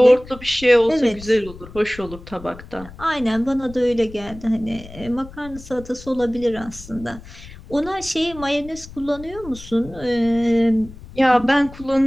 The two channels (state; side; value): noise; left; rumble, 17 dB below the sound